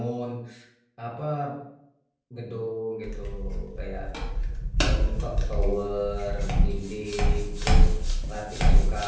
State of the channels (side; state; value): both; identical; correlation 1.00